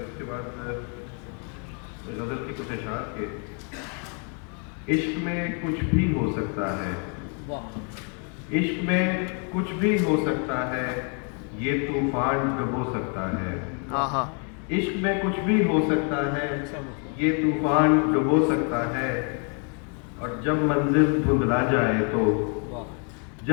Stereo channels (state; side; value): quieter; right; 39.7 dB